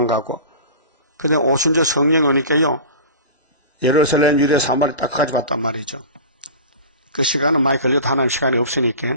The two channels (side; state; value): both; inverted; correlation -0.34